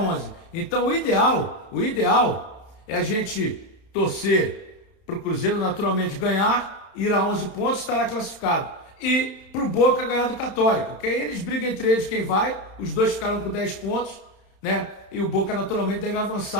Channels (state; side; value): late; right; 31 ms